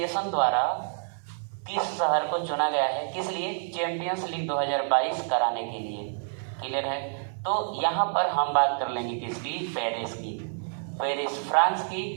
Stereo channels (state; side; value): silent; left; 59 dB below the other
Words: द्वारा किस शहर को चुना गया है? किस लिए? चैंपियंस लीग 2022 कराने के लिए। क्लियर है? तो यहाँ पर हम बात कर लेंगे किसकी? पेरिस की। पेरिस फ्रांस